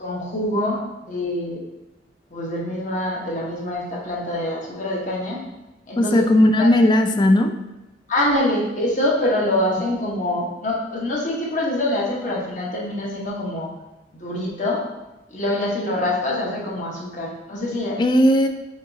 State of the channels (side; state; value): both; normal; correlation 0.52